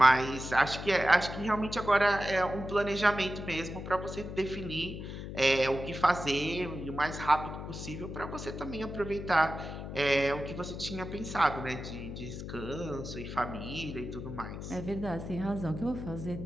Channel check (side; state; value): left; noise; hum, 8 dB below the sound